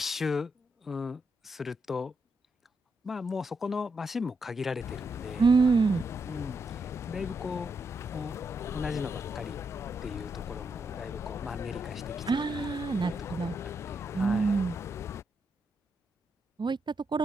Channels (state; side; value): normal; both; correlation 0.81